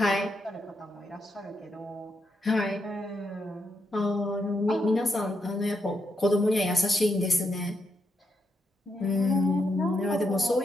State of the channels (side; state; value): both; normal; correlation 0.81